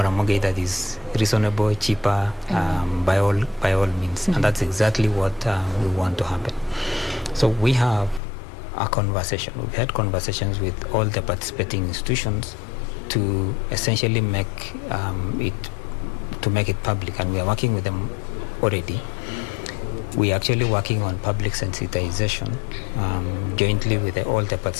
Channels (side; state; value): right; drops out; at 8.2 s